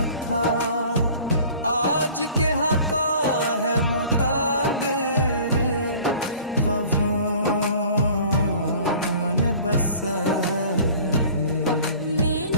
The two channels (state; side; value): inverted; both; correlation -0.47